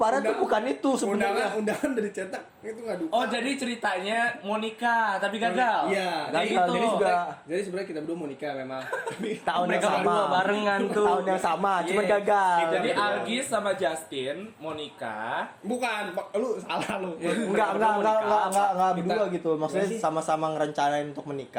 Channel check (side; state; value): both; identical; correlation 1.00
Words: tuh bukan itu sebenarnya. undangan dari cetak itu nggak duka. Oh, jadi ceritanya mau nikah tapi gagal. Iya. Gagal, Kayak gitu. jadi juga Jadi sebenarnya kita berdua mau nikah memang. Tapi tahun yang Mereka sama. berdua barengan tuh. Tahun yang sama, cuman Iya. gagal. Jadi Gitu. Algis sama Justin mau nikah. bukan, lu salah lu. Enggak berdua Kita- gitu. Maksudnya Gimana sih? sama-sama ngerencanain untuk